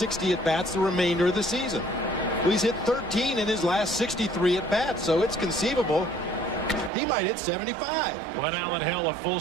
at-bats the remainder of the season. Well, he's hit 13 in his last 63 at-bats, so it's conceivable he might hit 75. Glenn Allen Hill a full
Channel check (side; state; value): left; drops out; at 6.9 s